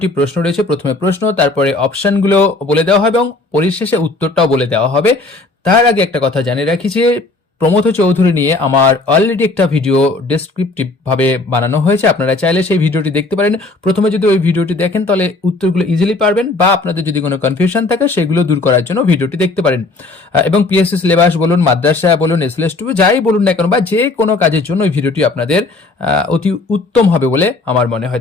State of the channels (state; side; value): quieter; right; 3.3 dB